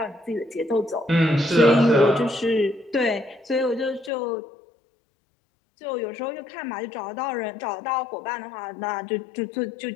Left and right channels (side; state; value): right; drops out; at 4.1 s